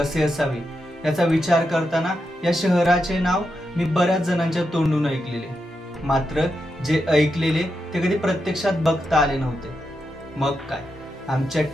असावे याचा विचार करताना या शहराचे नाव मी बऱ्याच जणांच्या तोंडून ऐकलेले, मात्र जे ऐकलेले ते कधी प्रत्यक्षात बघता आले नव्हते. मग काय, आमच्या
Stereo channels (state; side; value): normal; both; correlation 0.86